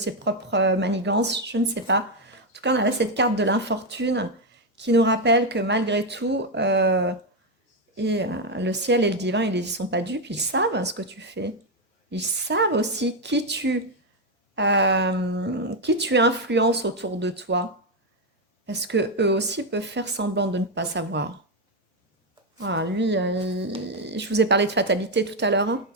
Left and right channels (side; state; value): both; normal; correlation 0.04